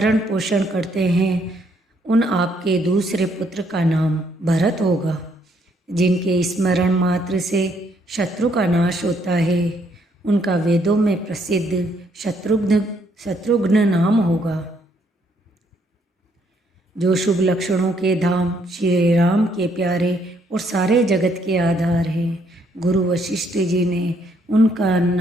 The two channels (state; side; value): normal; both; correlation 0.70